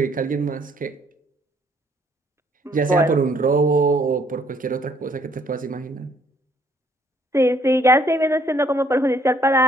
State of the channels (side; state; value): both; normal; correlation 0.65